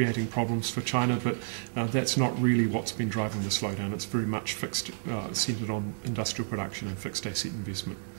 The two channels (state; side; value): silent; left; digital silence